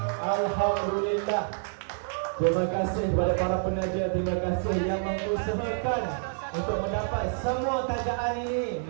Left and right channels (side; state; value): left; silent; digital silence